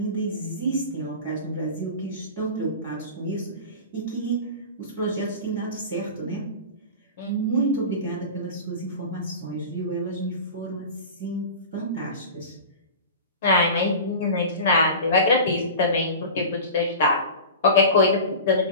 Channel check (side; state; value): both; inverted; correlation -0.33